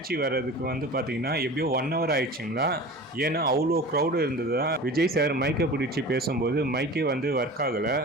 வர்றதுக்கு பார்த்தீங்கன்னா எப்படியோ 1 hour ஆயிடுச்சுங்களா. ஏன்னா அவ்வளோ க்ரௌடு இருந்ததா. விஜய் சார் மைக்கை பிடிச்சி பேசும்போது மைக்கே ஒர்க் ஆகலை.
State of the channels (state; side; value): normal; both; correlation 0.36